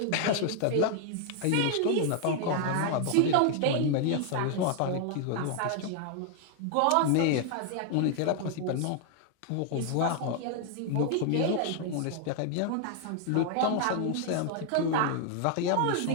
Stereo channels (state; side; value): different; both; correlation 0.00